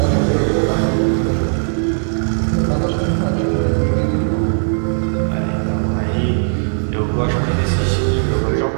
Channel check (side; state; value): left; silent; digital silence